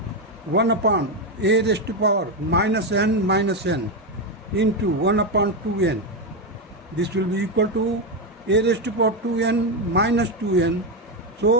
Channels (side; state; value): both; normal; correlation 0.08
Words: 1 upon a raised to power minus n into 1 upon 2n. This will be equal to a raised to power 2n minus 2n.